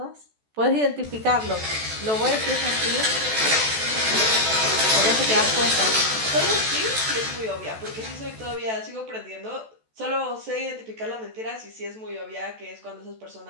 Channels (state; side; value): late; left; 14 ms